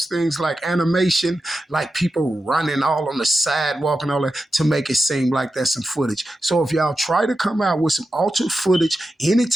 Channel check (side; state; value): both; normal; correlation 0.90